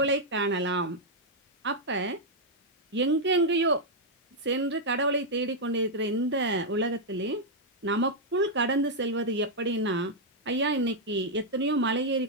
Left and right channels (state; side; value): normal; both; correlation -0.04